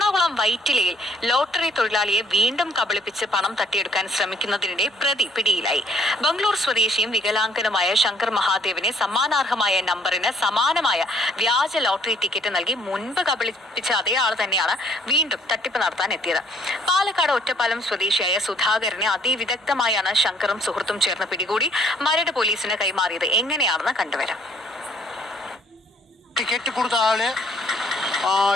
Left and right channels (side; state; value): both; normal; correlation 0.63